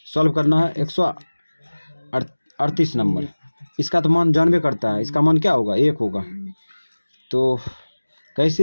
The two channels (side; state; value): both; inverted; correlation -1.00